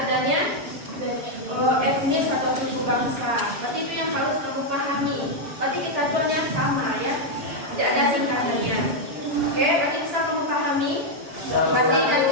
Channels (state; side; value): late; left; 6.9 ms